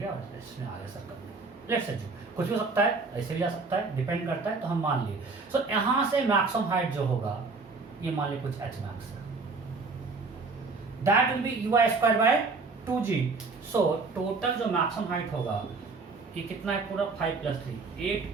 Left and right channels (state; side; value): quieter; left; 4.1 dB